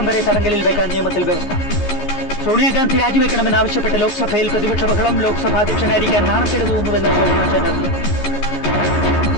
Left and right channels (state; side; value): late; right; 14 ms